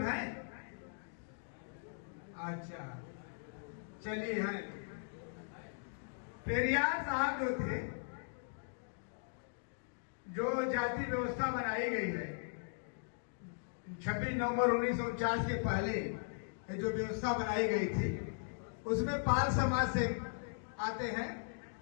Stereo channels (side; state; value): right; silent; digital silence